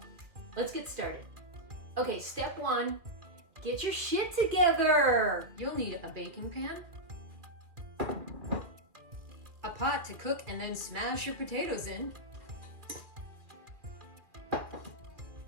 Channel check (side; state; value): left; late; 2.2 ms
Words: let's get started. Okay, step one, get your shit together. You'll need a baking pan, a pot to cook and then smash your potatoes in,